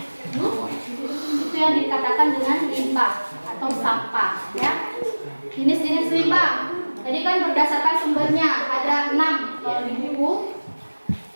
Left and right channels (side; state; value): both; inverted; correlation -1.00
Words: Itu yang dikatakan dengan limbah atau sampah, ya. Jenis-jenis limbah. Tadi kan berdasarkan sumbernya ada 6 kalau di buku.